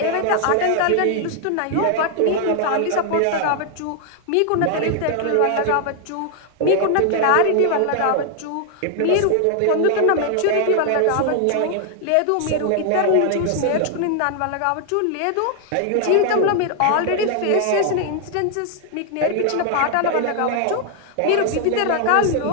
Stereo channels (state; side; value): different; both; correlation 0.00